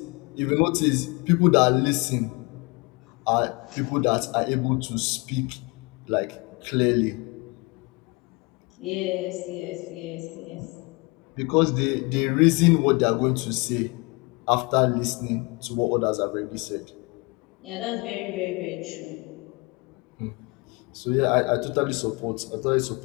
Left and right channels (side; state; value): right; quieter; 27.7 dB